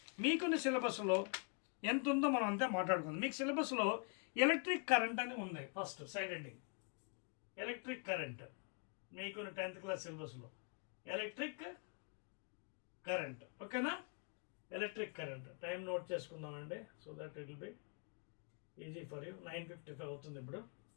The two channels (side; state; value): right; quieter; 38.5 dB